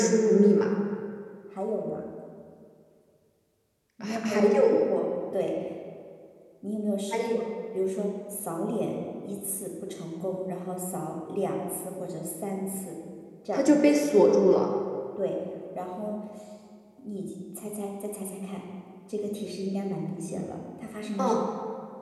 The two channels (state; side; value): identical; both; correlation 1.00